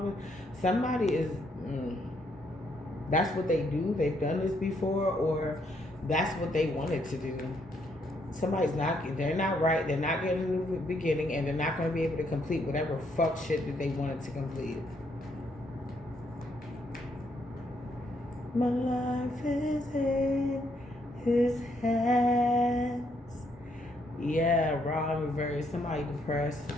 Somebody is... that's what they do. They've done this before, or that's what they wanted to do. Somebody's not... They're not right. They're not getting in the beginning, and they're not going to be able to complete whatever fuck shit that they wanted to complete. My life is in his hands. Yeah, Ra in reverse. Somebody depressed.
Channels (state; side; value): normal; both; correlation 0.73